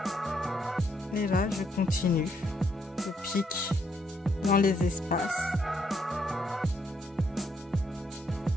Et là, je continue. Je pique dans les espaces.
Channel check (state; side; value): normal; both; correlation 0.73